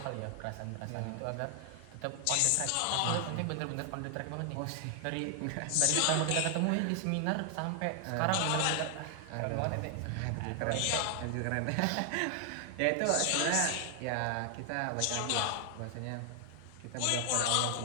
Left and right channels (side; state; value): both; different; correlation 0.00